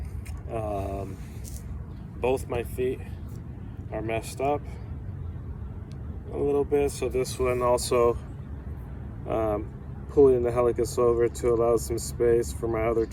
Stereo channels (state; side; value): identical; both; correlation 1.00